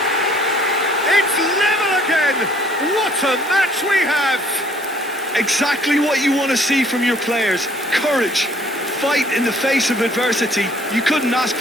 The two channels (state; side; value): normal; both; correlation 0.59